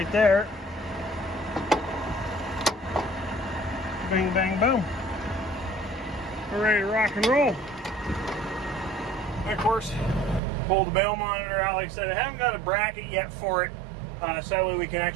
there. Bang, bang, boom. We're ready to rock and roll. And of course, pull the bale monitor out. Like I said, I haven't got a bracket yet for it, so that way we can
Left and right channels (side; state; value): left; drops out; at 10.4 s